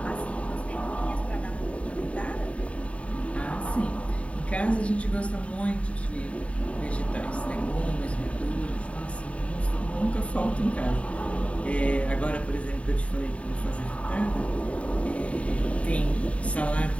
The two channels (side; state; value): right; late; 0.064 ms